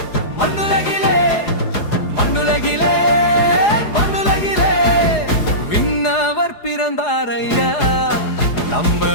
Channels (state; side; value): late; right; 4.8 ms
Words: மண்ணுலகிலே மண்ணுலகிலே மண்ணுலகிலே விண்ணவர் பிறந்தார் ஐயா, நம்ம